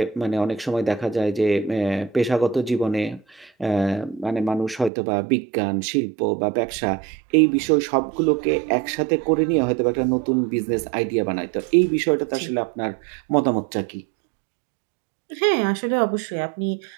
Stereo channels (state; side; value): drops out; left; at 4.9 s